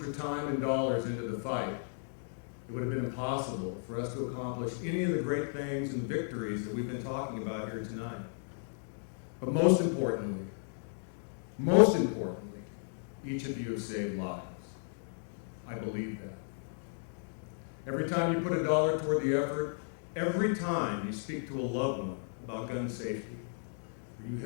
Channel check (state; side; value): silent; right; digital silence